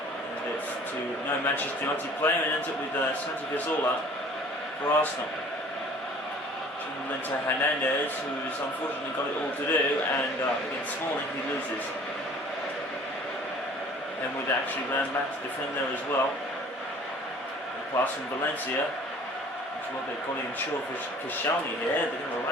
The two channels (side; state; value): both; normal; correlation 0.49